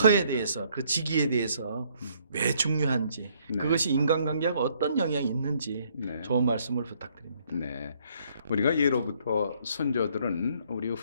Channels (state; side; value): inverted; both; correlation -0.66